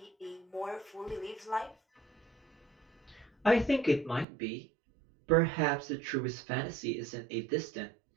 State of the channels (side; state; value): left; drops out; at 4.2 s